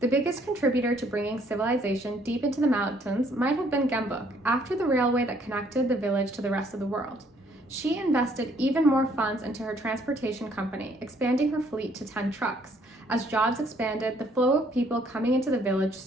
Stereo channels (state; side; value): normal; both; correlation 0.65